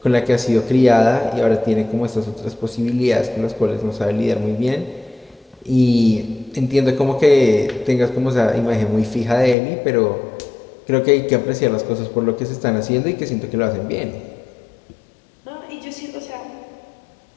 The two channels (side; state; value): right; drops out; at 9.6 s